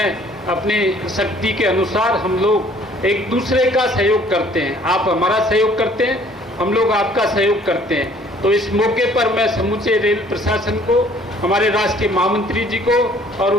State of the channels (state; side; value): normal; both; correlation 0.57